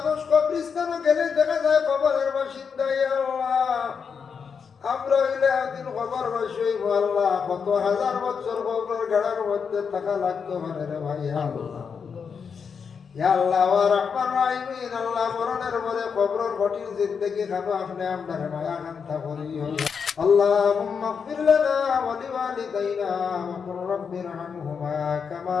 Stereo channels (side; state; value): right; quieter; 6.2 dB